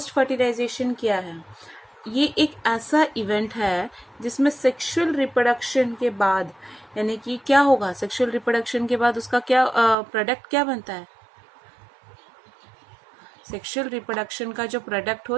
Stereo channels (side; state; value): left; drops out; at 10.0 s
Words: फर्टिलाइजेशन क्या है? ये एक ऐसा इवेंट है जिसमें सेक्सुअल रिप्रोडक्शन के बाद, यानी कि क्या होगा, सेक्सुअल रिप्रोडक्शन के बाद उसका क्या प्रोडक्ट क्या बनता है। सेक्सुअल रिप्रोडक्शन का जो प्रोडक्ट